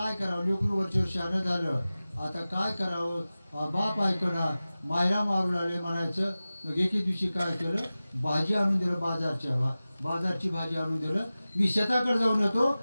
करावं, लेकरू वरच्या शहाणं झालं, आता काय करावं, बाप ऐकना, मायला मारू लागले म्हणायचं. मग एके दिवशी काय केलं, भाजी आणून दिलं, बाजारची भाजी आणून दिलं. मी शेताकडे जाऊन येतो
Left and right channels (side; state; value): both; inverted; correlation -0.96